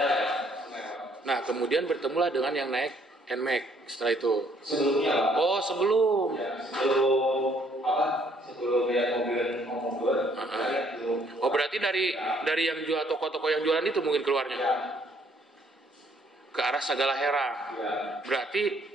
lewat. Nah, kemudian bertemulah dengan yang naik NMAX setelah itu. Sebelumnya Pak. Oh, sebelum. Ya, sebelum lihat mobil mau mundur, saya belum. Oh, berarti dari yang jual toko-toko yang jualan itu mungkin keluarnya Ya, ke arah Sagala Herang. ya.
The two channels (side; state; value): both; normal; correlation 0.65